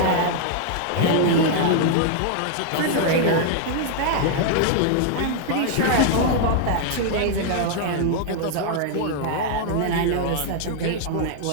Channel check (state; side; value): different; both; correlation 0.00